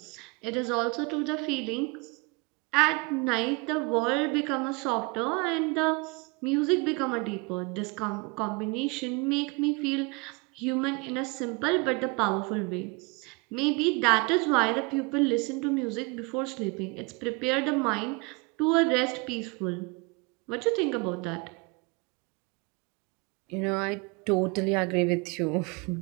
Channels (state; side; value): quieter; left; 28.2 dB